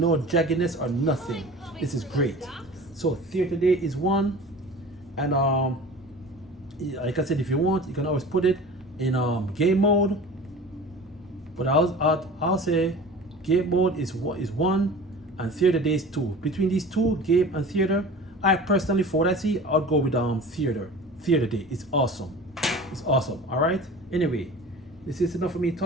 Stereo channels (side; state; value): both; normal; correlation 0.39